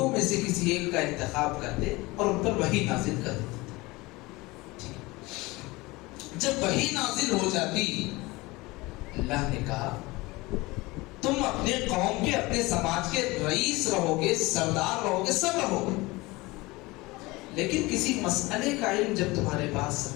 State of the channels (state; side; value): quieter; right; 22.1 dB